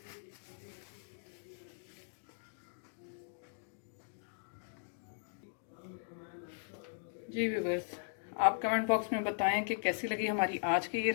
जी व्यूअर्स, आप कमेंट बॉक्स में बताएं कि कैसी लगी हमारी आज की ये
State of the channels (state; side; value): silent; right; digital silence